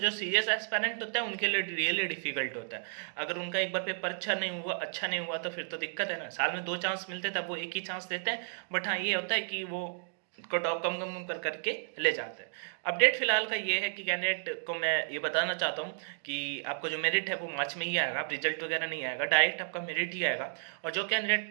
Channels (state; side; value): silent; left; digital silence